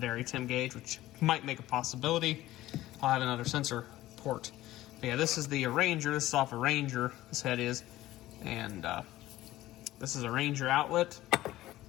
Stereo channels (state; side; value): quieter; right; 15.7 dB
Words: temp gauge, which might make a possibility. I'll have another sensor port. But yeah, this is the Ranger. This is off a Ranger, this head is. And this is a Ranger outlet.